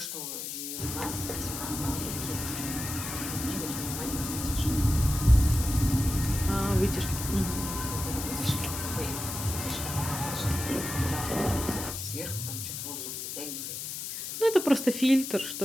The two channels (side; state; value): left; noise; hiss, 6 dB below the sound